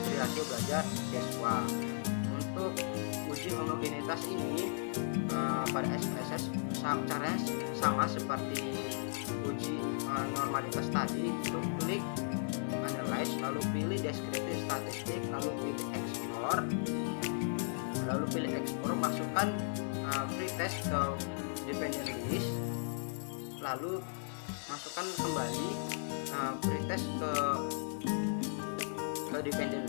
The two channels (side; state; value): right; silent; digital silence